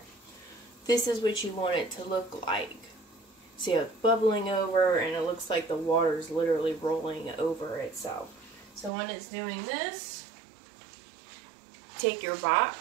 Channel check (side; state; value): left; drops out; at 8.9 s